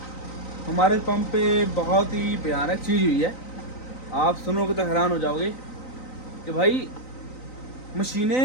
हमारे पंप पे बहुत ही भयानक चीज़ हुई है। आप सुनोगे तो हैरान हो जाओगे कि भाई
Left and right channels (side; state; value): right; late; 3.9 ms